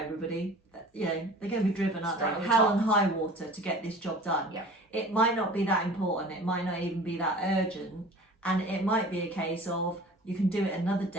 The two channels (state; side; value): normal; both; correlation 0.43